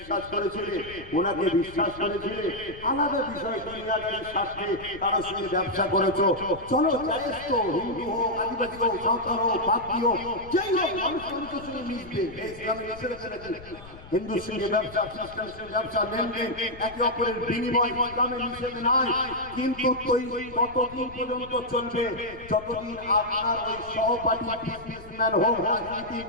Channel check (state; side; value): noise; left; rumble, 18 dB below the sound